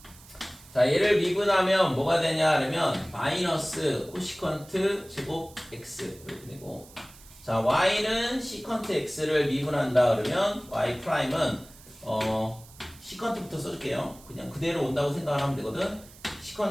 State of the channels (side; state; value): right; noise; hiss, 22 dB below the sound